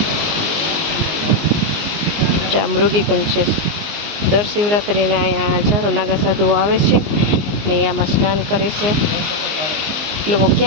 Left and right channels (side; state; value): left; late; 19 ms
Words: મૃગીકુંજ છે, દર શિવરાત્રિના અહીંયા હજારો નાગા સાધુઓ આવે છે ને આમાં સ્નાન કરે છે। લોકો